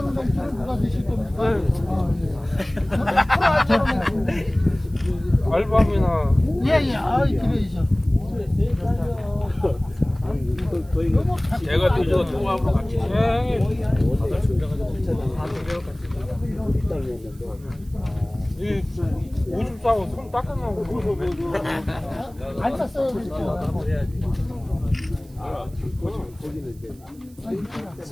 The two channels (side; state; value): right; noise; hiss, 28 dB below the sound